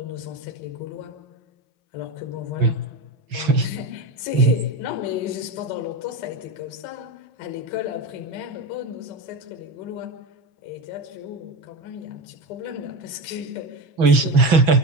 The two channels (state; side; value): late; left; 6.1 ms